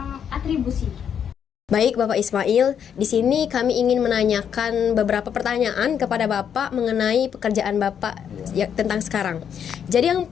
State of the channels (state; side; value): quieter; right; 8.3 dB